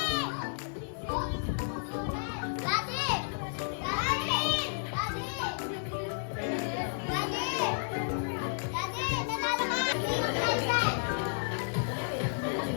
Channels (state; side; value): silent; right; digital silence